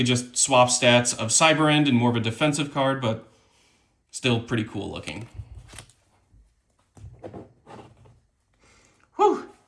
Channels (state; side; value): identical; both; correlation 1.00